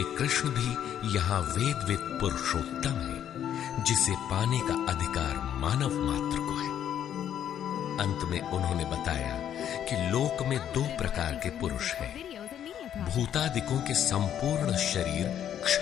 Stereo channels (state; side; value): quieter; right; 10.0 dB